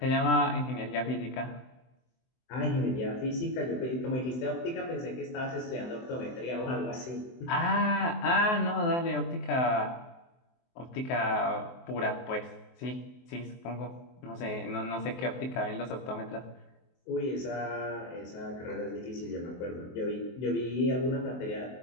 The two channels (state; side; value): late; right; 23 ms